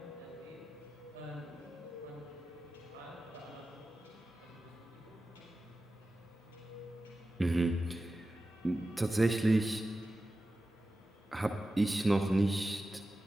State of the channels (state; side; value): normal; both; correlation 0.93